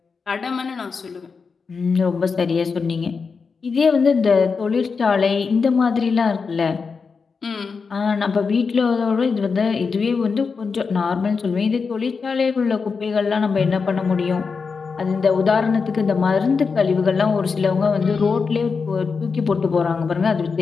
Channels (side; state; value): right; quieter; 5.1 dB